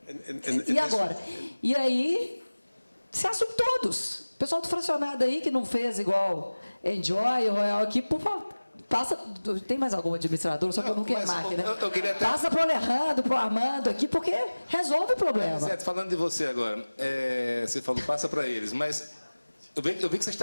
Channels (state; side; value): inverted; both; correlation -1.00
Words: E agora? E aí, se assume todos. O pessoal do fracionado aí que não fez igual Enjoy, Royal aqui, por favor, passa. Tem mais algum administrador? Só que eu não quero máquina. Eu queria até... Passa para o Alejandro, para o Armando aqui, porque resolve o problema. Certo, falando de você agora, você falou, passa para eles, mas eu vi que você